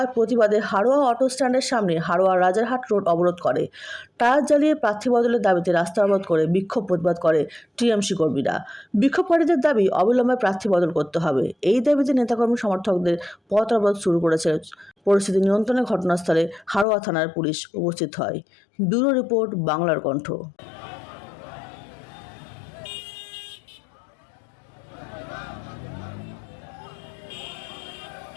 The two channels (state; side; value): drops out; right; at 16.9 s